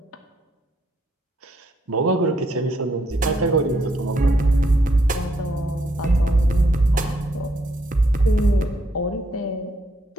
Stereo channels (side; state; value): both; normal; correlation 0.74